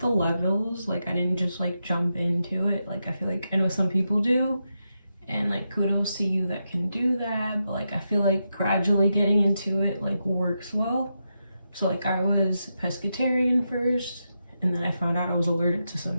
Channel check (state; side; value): inverted; both; correlation -0.86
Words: the levels, I didn't just jump into it. I feel I know some people do, and kudos to you that can do that, but I feel gradually getting into it works well. So I was pescatarian first, and then I found out I was allergic to